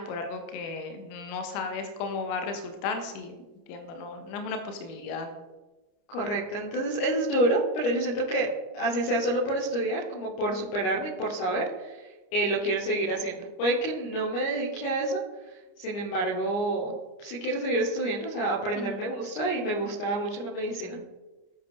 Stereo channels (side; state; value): right; late; 30 ms